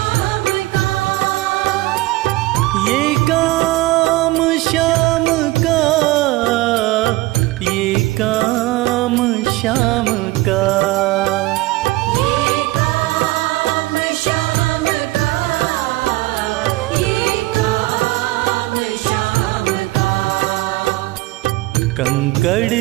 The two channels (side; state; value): left; quieter; 19.3 dB